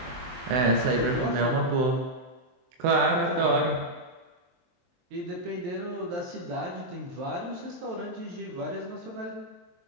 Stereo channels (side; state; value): left; late; 23 ms